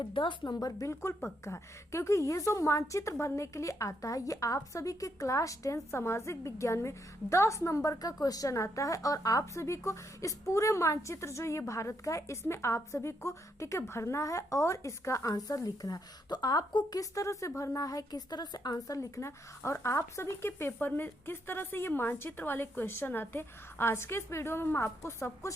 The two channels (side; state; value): both; normal; correlation 0.77